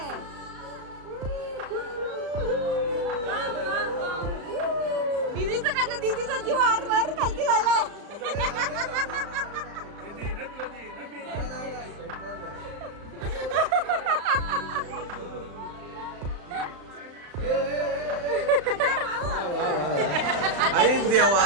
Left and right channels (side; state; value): left; late; 35 ms